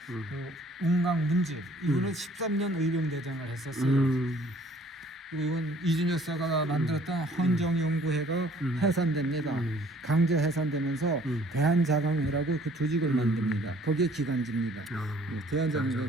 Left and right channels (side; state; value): both; normal; correlation 0.57